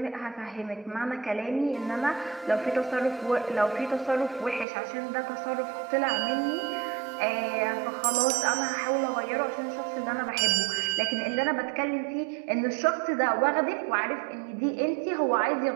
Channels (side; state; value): left; drops out; at 4.7 s